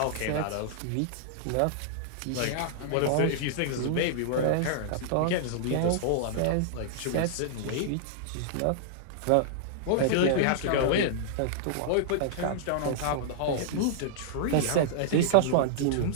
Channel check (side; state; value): both; different; correlation -0.01